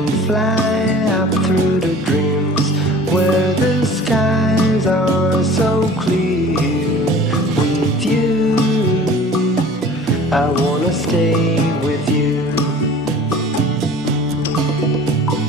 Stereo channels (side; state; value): both; normal; correlation 0.45